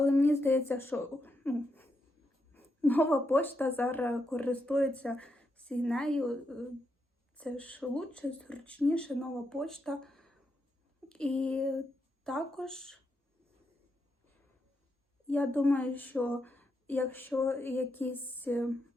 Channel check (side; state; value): both; normal; correlation 0.83